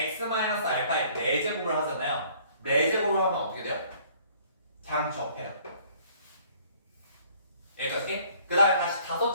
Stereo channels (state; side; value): inverted; both; correlation -0.58